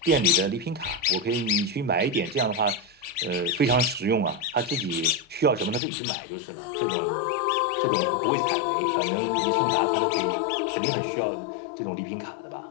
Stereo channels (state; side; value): drops out; right; at 5.8 s